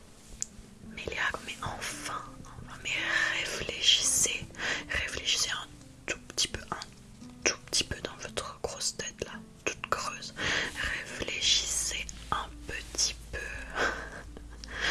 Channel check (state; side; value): identical; both; correlation 1.00